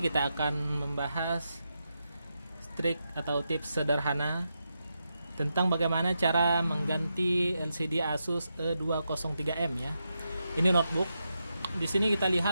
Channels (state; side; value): inverted; both; correlation -0.86